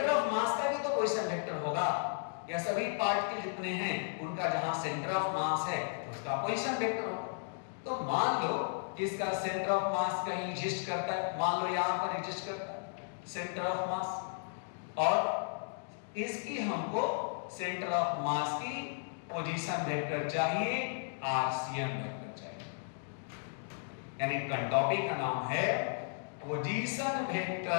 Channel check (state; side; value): silent; right; digital silence